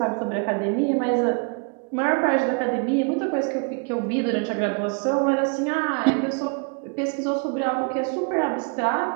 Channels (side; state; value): left; quieter; 35.5 dB